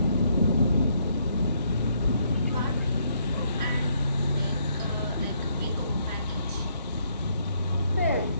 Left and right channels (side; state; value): both; inverted; correlation -0.72